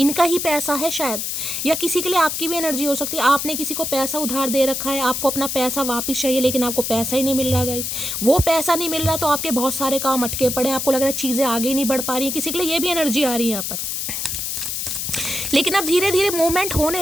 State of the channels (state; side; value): noise; left; hiss, 3 dB below the sound